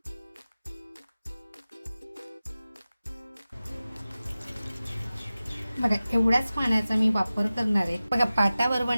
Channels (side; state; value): both; inverted; correlation -0.96